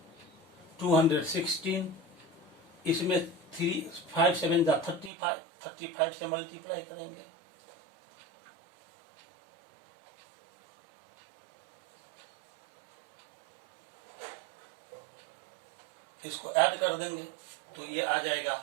216, इसमें 5 7 जा 35 से मल्टीप्लाई करेंगे, इसको ऐड कर देंगे तो ये आ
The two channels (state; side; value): drops out; left; at 5.1 s